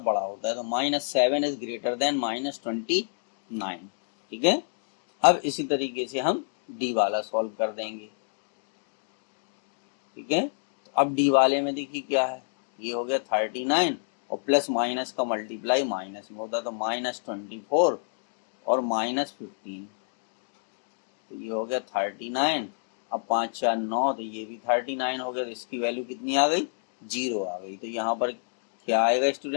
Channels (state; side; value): silent; right; digital silence